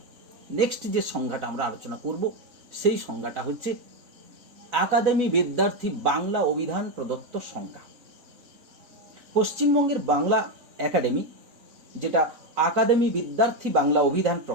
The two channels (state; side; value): late; left; 4.0 ms